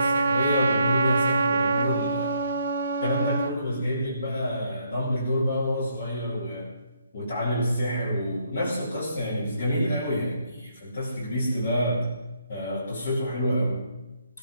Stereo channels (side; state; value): both; inverted; correlation -0.73